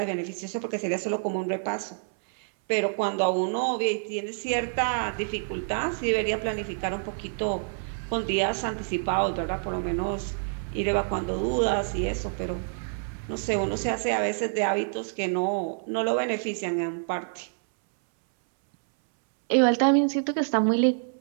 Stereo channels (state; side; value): silent; left; 60 dB below the other